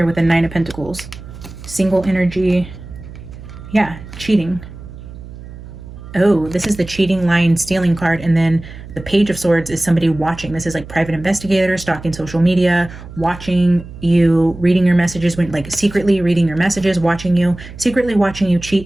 with the Nine of Pentacles. Single energy. Yeah, cheating. Oh, this is the cheating, lying, stealing card. And then the Page of Swords is somebody watching. This is like private investigator, stalking social media, watching you, reading your messages, when like secretly reading your messages, watching you, secretly watching you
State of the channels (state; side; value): noise; right; hum, 15 dB below the sound